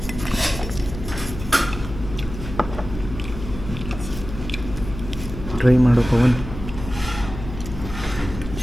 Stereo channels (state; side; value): noise; left; hum, 10 dB below the sound